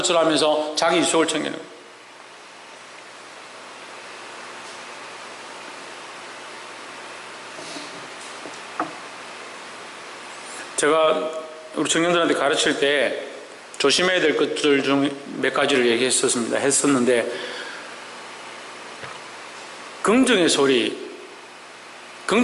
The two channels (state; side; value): identical; both; correlation 1.00